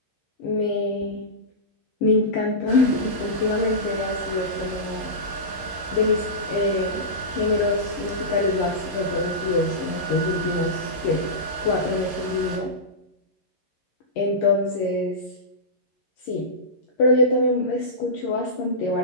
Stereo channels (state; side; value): late; right; 11 ms